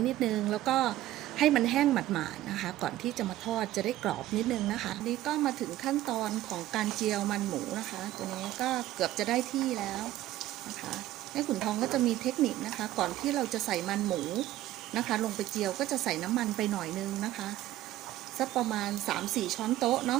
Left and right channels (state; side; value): quieter; left; 14.5 dB